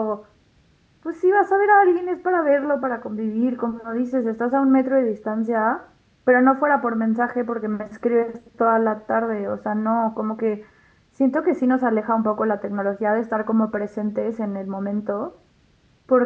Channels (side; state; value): both; identical; correlation 1.00